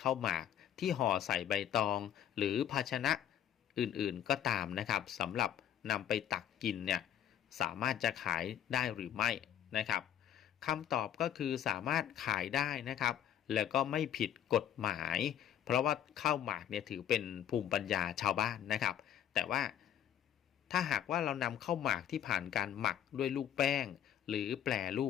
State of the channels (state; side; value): quieter; right; 10.1 dB